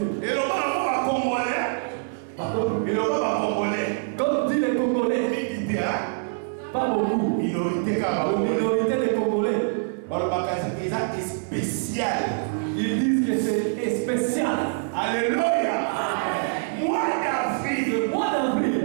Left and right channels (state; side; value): silent; left; 62 dB below the other